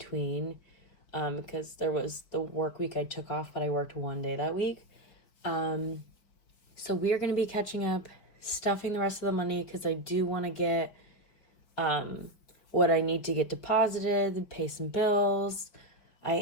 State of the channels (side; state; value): right; late; 5.0 ms